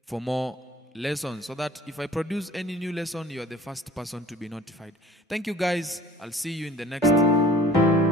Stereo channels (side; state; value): both; normal; correlation 0.48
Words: for more lessons, so that if I produce any new lesson, you are the first person to be notified. Thank you guys. I'll see you in the next